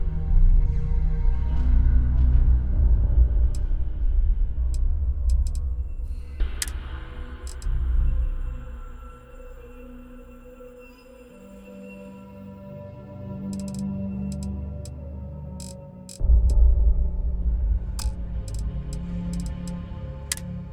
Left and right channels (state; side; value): identical; both; correlation 1.00